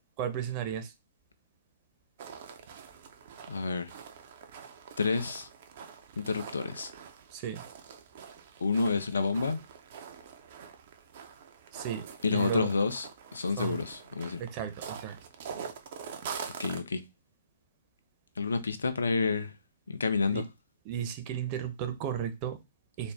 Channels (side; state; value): both; inverted; correlation -0.71